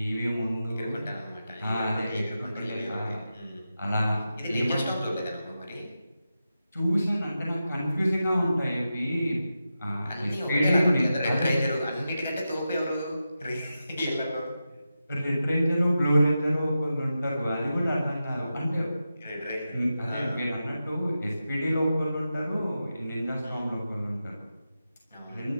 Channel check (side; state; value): both; inverted; correlation -0.90